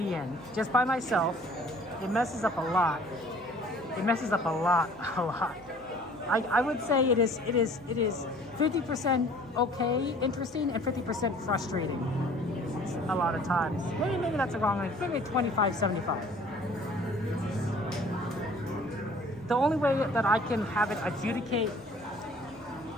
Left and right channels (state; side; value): noise; right; hum, 25 dB below the sound